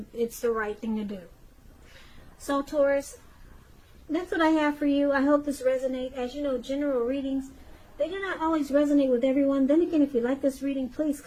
the right thing to do. So Taurus, that's what I have for you. I hope this resonates. As you know, general readings, they do not always resonate with everyone. Then again, if you like this reading, please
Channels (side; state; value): both; identical; correlation 1.00